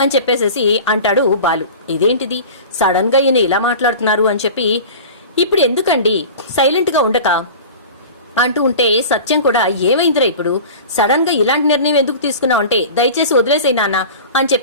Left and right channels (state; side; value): inverted; both; correlation -0.36